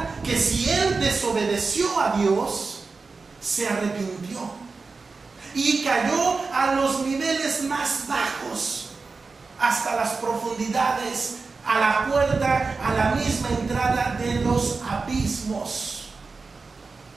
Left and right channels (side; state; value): left; quieter; 4.2 dB